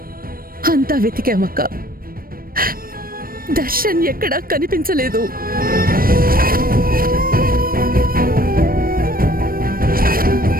అంతా వెతికామక్క, దర్శన్ ఎక్కడా కనిపించలేదు.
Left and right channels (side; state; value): left; late; 0.42 ms